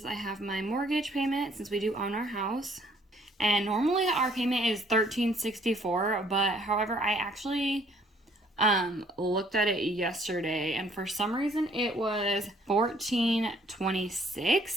I have my mortgage payment since we do own our house. And normally our payment is $1,364, but however, I actually looked at it yesterday, and for some reason it was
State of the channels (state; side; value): normal; both; correlation 0.62